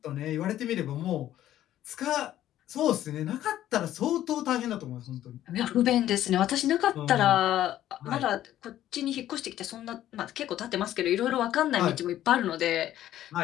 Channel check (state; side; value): quieter; right; 12.7 dB